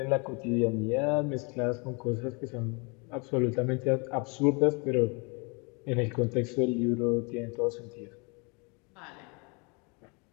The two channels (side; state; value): right; quieter; 31.7 dB